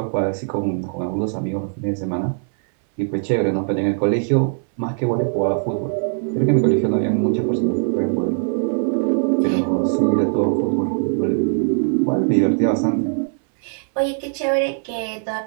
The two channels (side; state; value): left; silent; 60 dB below the other